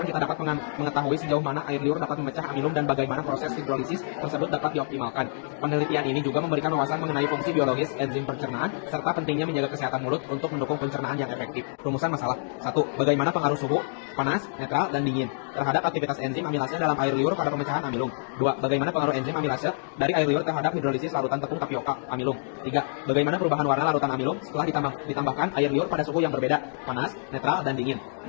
kita dapat mengetahui sejauh mana air liur dapat memecah amilum dan bagaimana proses hidrolisis tersebut dapat dioptimalkan. Penelitian ini juga memberikan wawasan mengenai fungsi biologis enzim pencernaan serta pentingnya menjaga kesehatan mulut untuk mendukung pencernaan yang efektif. Rumusan masalah. 1. Bagaimana pengaruh suhu, panas, netral, dan dingin terhadap aktivitas enzim amilase dalam air liur pada pemecahan amilum. 2. Bagaimana pengaruh enzim amilase dari air liur terhadap hidrolisis larutan tepung tapioka amilum. 3. Bagaimana perubahan warna larutan amilum setelah ditambahkan air liur pada suhu yang berbeda, panas, netral, dan dingin.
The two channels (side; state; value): right; silent; digital silence